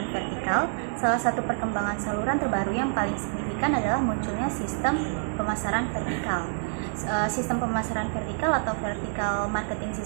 vertikal. Salah satu perkembangan saluran terbaru yang paling signifikan adalah munculnya sistem pemasaran vertikal. Sistem pemasaran vertikal atau vertical marketing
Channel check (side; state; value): left; silent; 60 dB below the other